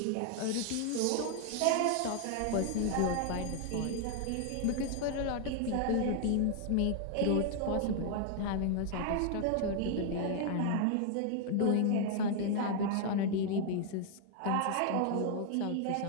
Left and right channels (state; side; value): different; both; correlation 0.00